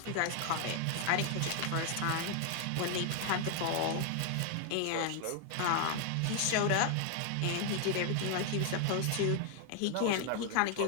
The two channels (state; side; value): different; both; correlation 0.00